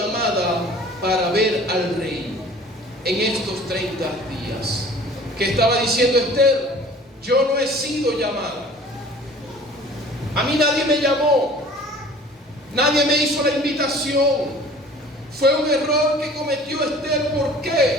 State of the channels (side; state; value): both; normal; correlation 0.47